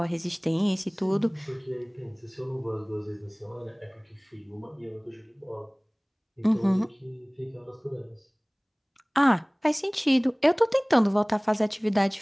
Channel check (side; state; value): both; identical; correlation 1.00